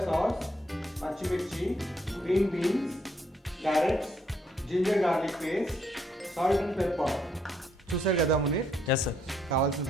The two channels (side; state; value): both; normal; correlation 0.72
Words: సాస్, పచ్చిమిర్చి, green beans, carrots, ginger garlic paste, salt and pepper. చూసారు కదా మునీర్, ఎస్ సార్. కావాల్సిన